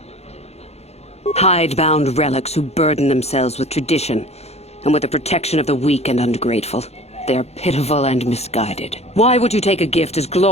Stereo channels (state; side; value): late; right; 0.31 ms